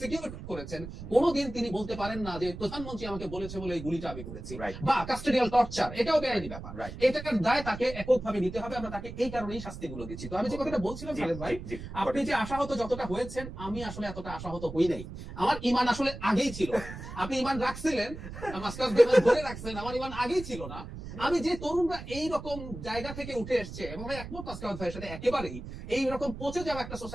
করেছেন কোনোদিন তিনি বলতে পারেন না যে প্রধানমন্ত্রী আমাকে বলেছে বলে এই গুলিটা আমি করেছি। বা কাস্টোডিয়াল টর্চার, এটাও বেআইনি ব্যাপার, এটার দায় তাকে এককভাবে নিতে হবে। আমরা তাকে এই কারণেই শাস্তিগুলো দিচ্ছি। তো আমি যে কথাটা বলছিলাম খালেদ ভাই, আপনি যে আশাহত যতটা হয়েছেন, আমি আসলে এতটা আশাহত হই নাই। আমার ইমান আসলে আগেই ছিল। আপনি ইমান রাখছিলেন, মাস্টার ধরে রাখছেন, আমার ইমান আগেই ছিল না। আমি যে তরুণরা এইরকম জায়গা থেকে উঠে এসছে, এবং একমত মাস্টার ভাইয়ের সাথে একেবারেই, এইরকম পচে যাওয়া একটা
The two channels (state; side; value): noise; right; rumble, 11 dB below the sound